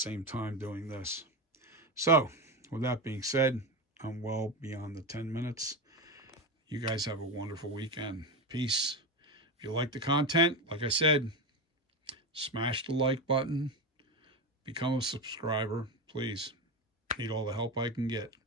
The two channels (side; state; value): both; normal; correlation 0.17